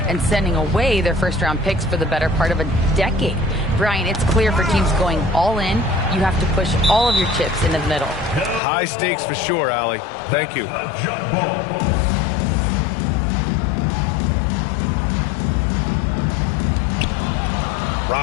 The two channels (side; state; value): right; drops out; at 8.6 s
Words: and sending away their first-round picks for the better part of a decade. Brian, it's clear for teams going all in, you have to push all of your chips into the middle. High stakes for sure, Allie. Thank you.